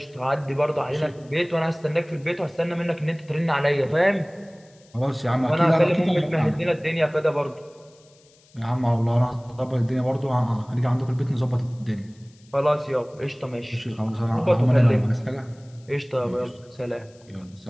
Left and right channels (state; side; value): noise; left; hiss, 30 dB below the sound